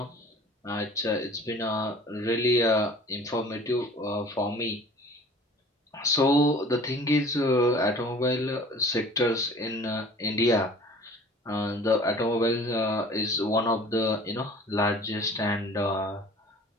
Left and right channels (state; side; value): normal; both; correlation 0.47